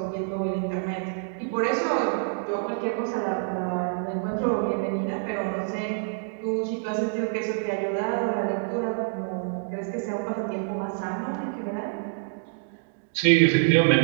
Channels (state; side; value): silent; left; digital silence